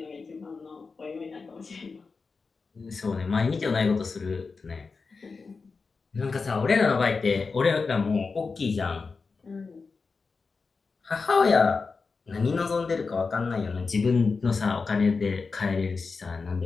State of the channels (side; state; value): right; quieter; 4.5 dB